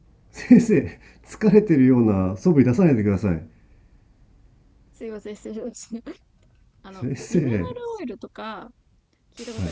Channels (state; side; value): identical; both; correlation 1.00